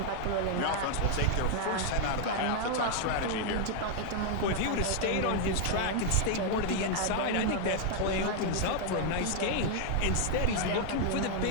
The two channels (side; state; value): both; different; correlation 0.00